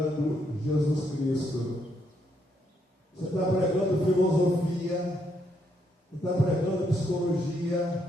Jesus Cristo. Você está pregando filosofia, você está pregando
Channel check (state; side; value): normal; both; correlation 0.75